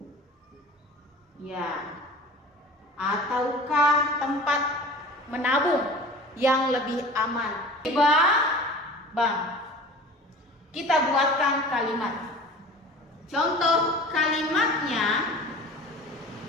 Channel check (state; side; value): normal; both; correlation 0.40